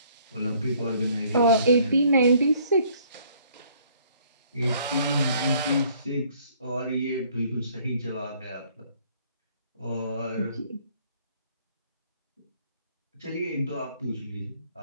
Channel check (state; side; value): inverted; both; correlation -0.61